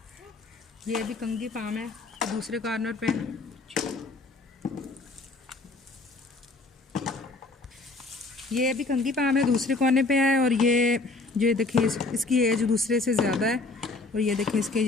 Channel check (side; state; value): right; quieter; 3.5 dB